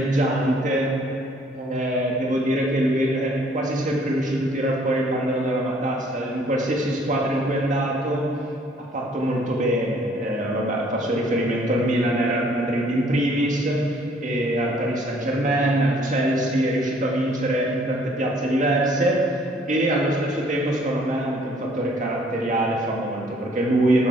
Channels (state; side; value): normal; both; correlation 0.60